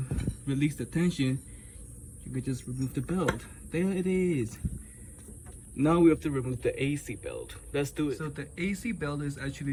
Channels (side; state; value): both; identical; correlation 1.00